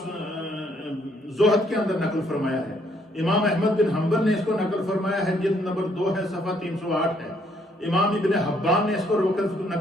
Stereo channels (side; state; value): both; normal; correlation 0.68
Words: کے اندر نقل فرمایا ہے. امام احمد بن حنبل نے اس کو نقل فرمایا ہے، جلد نمبر 2 ہے، صفحہ 308 ہے. امام ابن حبان نے اس کو